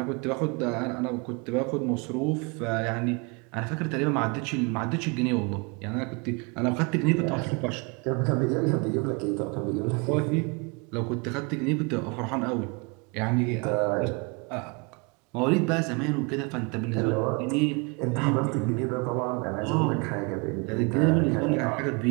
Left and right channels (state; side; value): quieter; left; 31.1 dB